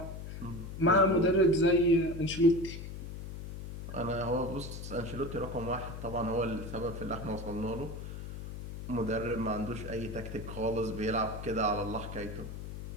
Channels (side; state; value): left; noise; hum, 9 dB below the sound